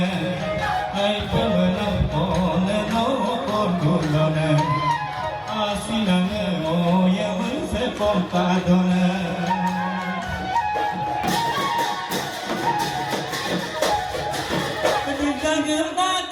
ay pemenang pone no pondulone, asinane oye se compadone. Kita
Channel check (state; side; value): identical; both; correlation 1.00